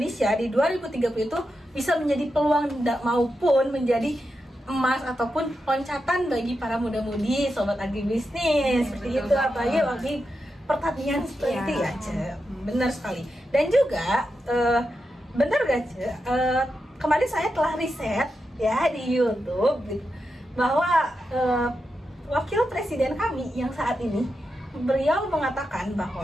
di 2030 itu bisa menjadi peluang maupun menjadi emas ataupun loncatan bagi para muda-mudi sobat agribisnis seperti itu, apalagi bagi pertanian seperti itu ya, Ce. Benar sekali. Dan juga benar gak, Ce? Kemarin saya telah riset ya di YouTube bahwa wakil presiden kami yang saat ini beliau mengatakan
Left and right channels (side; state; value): both; normal; correlation 0.88